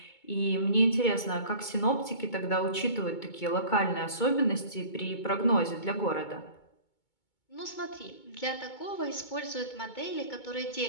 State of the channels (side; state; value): right; late; 2.2 ms